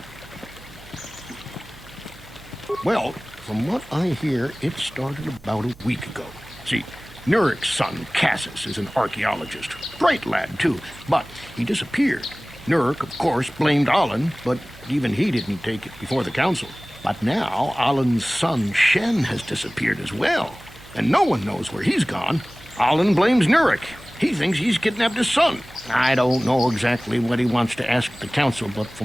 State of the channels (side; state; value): right; noise; hum, 23 dB below the sound